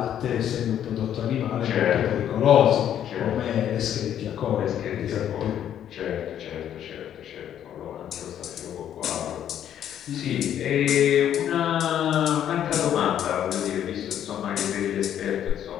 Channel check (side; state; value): right; quieter; 10.2 dB